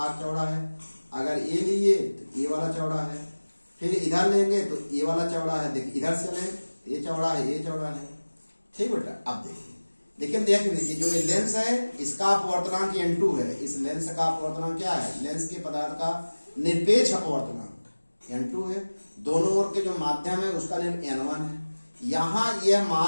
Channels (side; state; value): both; inverted; correlation -1.00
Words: चौड़ा है। अगर ये लिए तो ये वाला चौड़ा है, फिर इधर लेंगे तो ये वाला चौड़ा है। देखिए इधर से लें तो ये चौड़ा है, ये चौड़ा है। ठीक बेटा, अब देखिए, लेकिन देख लीजिए जो ये लेंस है इसका अपवर्तनांक n2 है। इस लेंस का अपवर्तनांक क्या है, लेंस के पदार्थ का निरपेक्ष अपवर्तनांक n2 है। दोनों ओर के जो माध्यम है उसका n1 है। यहाँ यह